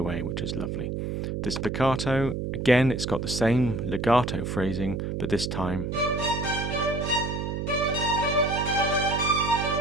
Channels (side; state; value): right; noise; hum, 3 dB below the sound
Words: which is lovely. The spiccato, again, it's got the same legato phrasing, but this time